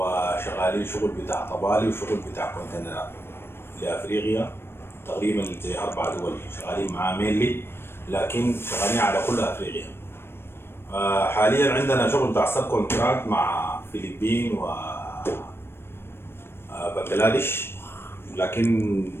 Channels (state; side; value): late; right; 0.12 ms